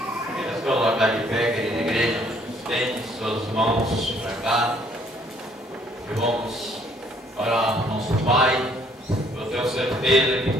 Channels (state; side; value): normal; both; correlation 0.63